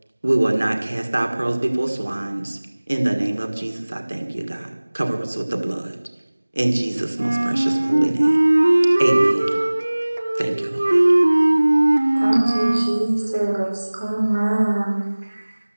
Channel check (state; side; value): inverted; both; correlation -1.00